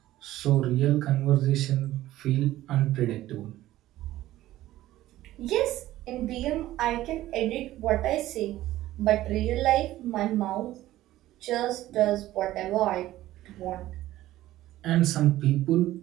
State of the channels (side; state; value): left; quieter; 15.1 dB